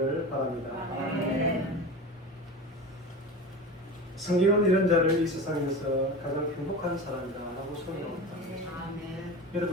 바랍니다. 성경은 이런 자를 이 세상에서 가장 행복한 사람이라고 소개합니다.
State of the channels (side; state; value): both; normal; correlation 0.30